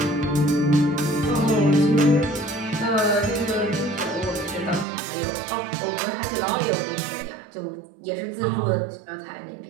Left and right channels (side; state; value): left; drops out; at 4.9 s